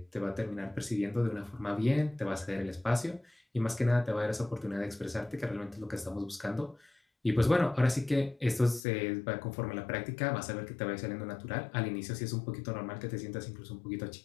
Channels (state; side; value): drops out; right; at 8.8 s